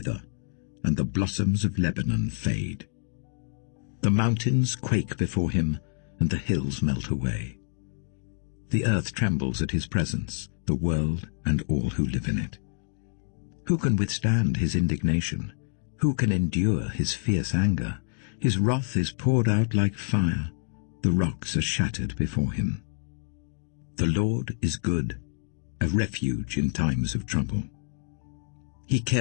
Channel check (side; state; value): right; silent; digital silence